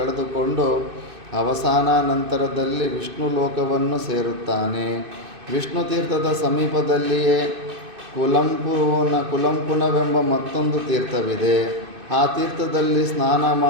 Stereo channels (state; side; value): late; left; 2.6 ms